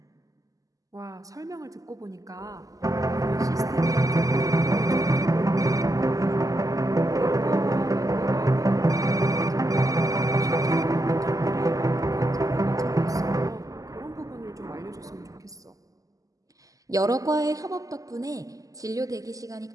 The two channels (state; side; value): late; left; 0.17 ms